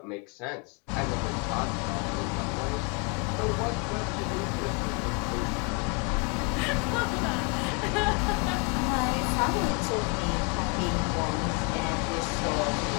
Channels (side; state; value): right; quieter; 33.9 dB